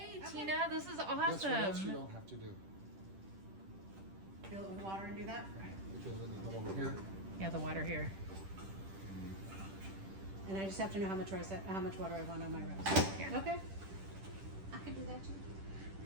Okay. Tina. This is That's what else you awesome. don't have to do. Fill it with water and do that. Because then you come over here. Yeah, the water here. And I just have to know how much water I want on my rice. Yeah. Okay. I can do that too.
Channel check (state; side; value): late; left; 10 ms